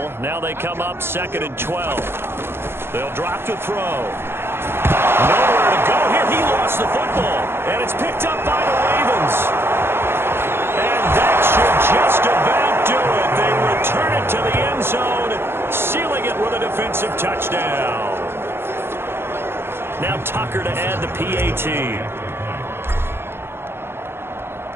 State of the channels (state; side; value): late; left; 0.11 ms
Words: Now they come up 2nd and 12. They'll drop to throw. Nowhere to go here. He lost the football. And it's picked up by the Ravens. And that should just about do it. They return it to the end zone, sealing it with a defensive touchdown. Now Tucker to add the PAT.